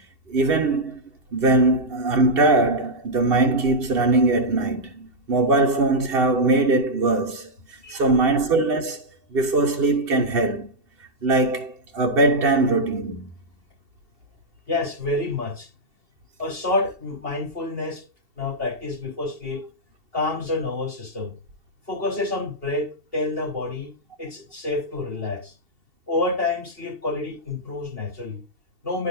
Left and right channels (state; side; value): late; left; 2.7 ms